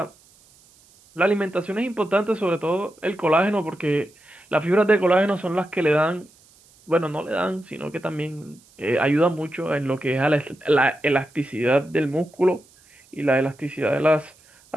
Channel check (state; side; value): noise; right; hiss, 29 dB below the sound